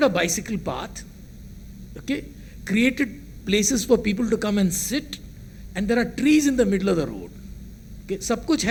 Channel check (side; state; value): both; identical; correlation 1.00